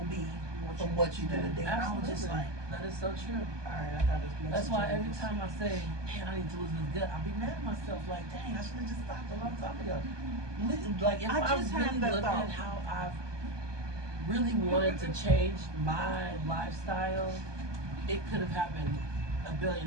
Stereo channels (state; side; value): late; left; 1.2 ms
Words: be from what you did today. And I was just Absolutely. like, That is so true. all right, I got this. That's why every time I say, man, I need to lose this gut, I'll be mad at myself, like, dang, I should have just stopped a long time ago. Like, if I I just really had that looked thought. at how I've really wanted to change my lifestyle, it could have happened a